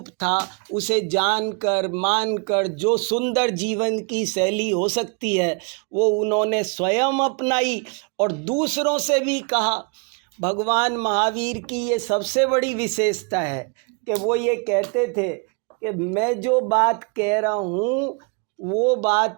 था उसे जानकर मानकर जो सुंदर जीवन की शैली हो सकती है वो उन्होंने स्वयं अपनाई और दूसरों से भी कहा। भगवान महावीर की ये सबसे बड़ी विशेषता है कि वो ये कहते थे कि मैं जो बात कह रहा हूँ वो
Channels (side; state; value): left; quieter; 35.2 dB